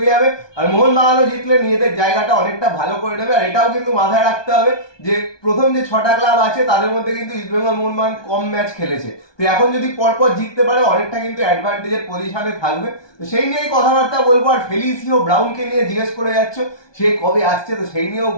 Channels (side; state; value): right; late; 1.2 ms